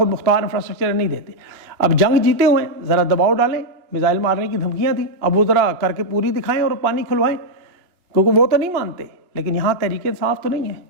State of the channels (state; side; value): late; left; 2.8 ms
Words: مختار انفراسٹرکچر نہیں دیتے. اب جنگ جیتے ہوئے ذرا دباؤ ڈالیں، میزائل مارنے کی دھمکیاں تھیں، اب وہ ذرا کر کے پوری دکھائیں اور پانی کھلوائیں، کیونکہ وہ تو نہیں مانتے. لیکن یہاں تحریک انصاف تو نہیں ہے.